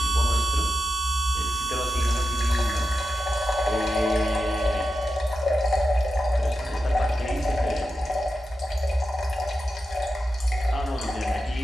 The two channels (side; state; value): both; normal; correlation 0.90